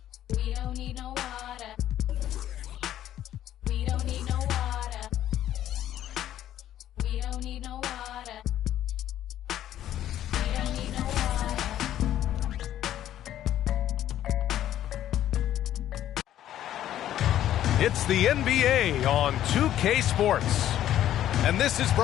We don't need no water. We don't need no water. We don't need no water. It's the NBA on 2K Sports. And this is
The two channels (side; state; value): right; quieter; 11.9 dB